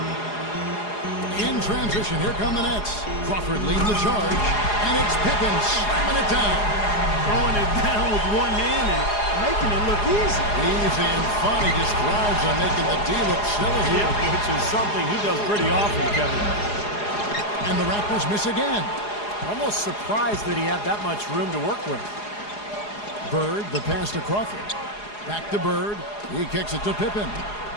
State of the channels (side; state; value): right; late; 4.8 ms